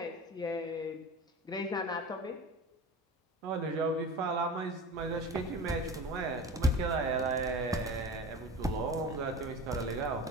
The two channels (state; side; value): normal; both; correlation 0.34